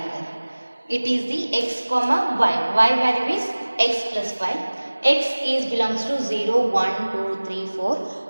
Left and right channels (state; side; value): inverted; both; correlation -1.00